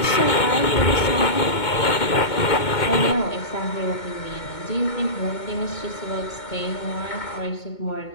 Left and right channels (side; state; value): right; late; 2.2 ms